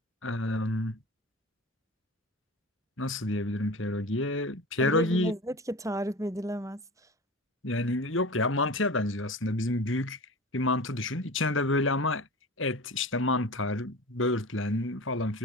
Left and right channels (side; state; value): both; normal; correlation 0.33